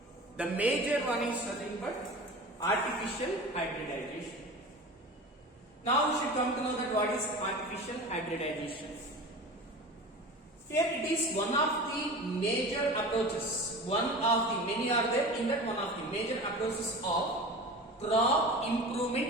The major one is nothing but artificial hybridization. Now we should come to know that what is artificial hybridization. Here it is one of the major approaches. One of the many are there. In that, one of the major approaches of crop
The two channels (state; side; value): normal; both; correlation 0.34